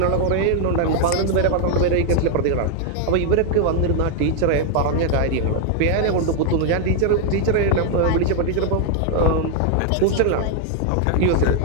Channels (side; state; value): both; different; correlation 0.00